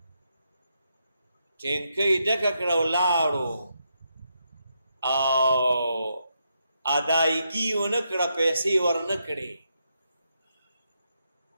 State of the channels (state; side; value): inverted; both; correlation -0.81